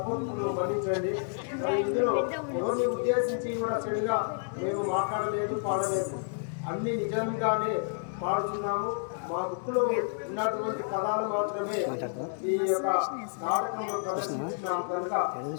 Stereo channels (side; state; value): right; silent; digital silence